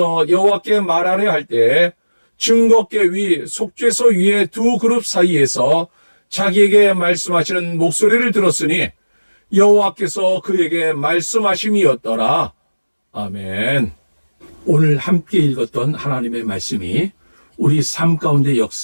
여호와께 말하려 할 때 증거궤 위 속죄소 위의 두 그룹 사이에서 자기에게 말씀하시는 목소리를 들었으니 여호와께서 그에게 말씀하심이었더라. 아멘. 오늘 함께 읽었던 하나님의 말씀이 우리 삶 가운데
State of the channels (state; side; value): inverted; both; correlation -1.00